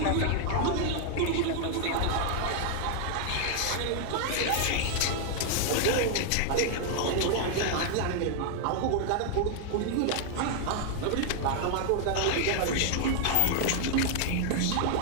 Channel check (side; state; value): both; different; correlation 0.00